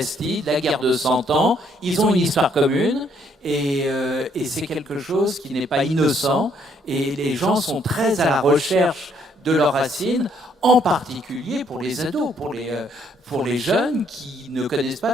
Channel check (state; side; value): normal; both; correlation 0.68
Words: la guerre de 100 ans. Ils ont une histoire commune. Et c'est quelque chose qui n'est pas innocent, et les gens sont très à la recherche de leurs racines, en particulier pour les ados, pour les jeunes qui ne connaissent